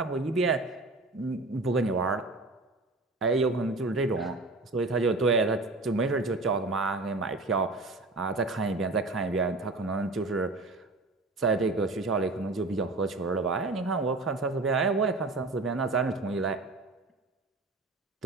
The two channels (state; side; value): quieter; left; 3.2 dB